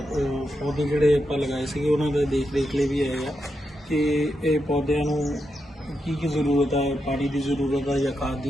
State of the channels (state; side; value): normal; both; correlation 0.85